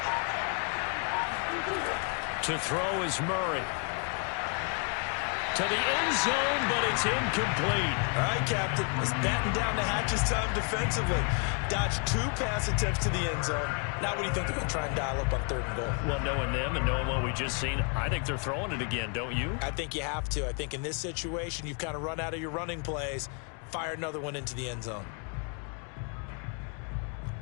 To throw is Murray. To the end zone, but it's incomplete. All right, Captain. Let's batten down the hatches time defensively. Dodged 2 pass attempts to the end zone. Now what do you think they're going to try and dial up on 3rd and goal? Well, knowing them and knowing what we just seen, I think they're throwing it again, don't you? I think you have to. I think in this situation, you've kind of run out of your running plays. Fire another one into the end zone.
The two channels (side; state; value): right; quieter; 38.5 dB